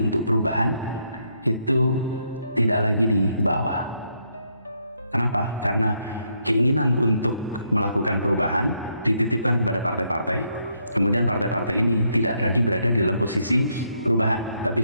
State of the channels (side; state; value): both; inverted; correlation -0.75